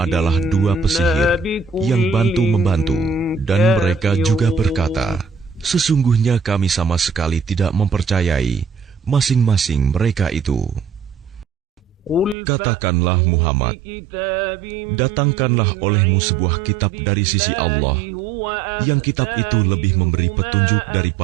dua pesihir yang bantu-membantu. Dan mereka juga berkata, sesungguhnya kami sama sekali tidak mempercayai masing-masing mereka itu. Katakanlah Muhammad, datangkanlah olehmu sebuah kitab dari sisi Allah, yang kitab itu lebih memberi petunjuk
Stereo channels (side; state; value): left; drops out; at 12.4 s